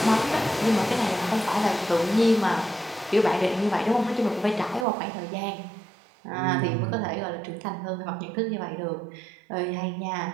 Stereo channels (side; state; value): left; drops out; at 4.9 s